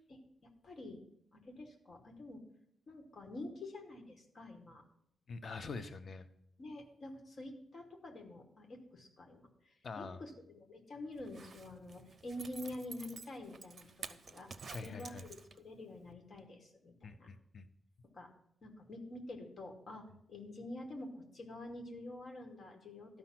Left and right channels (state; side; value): normal; both; correlation 0.83